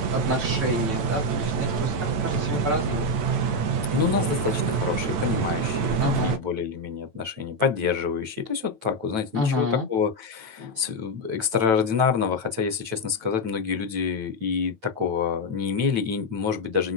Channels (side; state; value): left; late; 9.1 ms